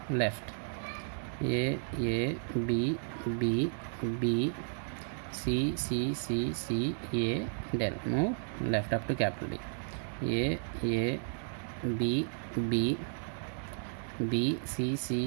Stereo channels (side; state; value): left; silent; 55 dB below the other